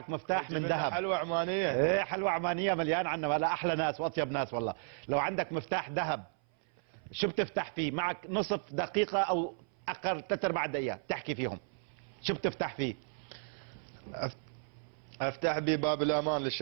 مفتاح من ذهب. حلوة عمانية. ايه حلوة عمانية مليان عنا، ولا احلى ناس واطيب ناس والله. لو عندك مفتاح ذهب شو بتفتح فيه؟ معك نصف دقيقة او اقل 3/4 دقيقة تحكي فيهم، شو بتفتح فيه؟ افتح بي باب الامان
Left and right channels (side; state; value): left; silent; 55 dB below the other